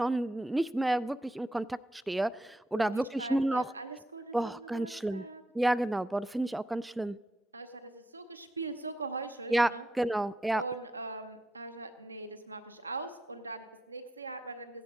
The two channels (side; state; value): both; normal; correlation 0.83